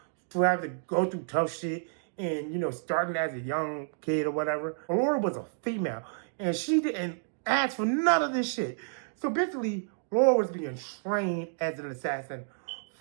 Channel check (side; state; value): left; silent; digital silence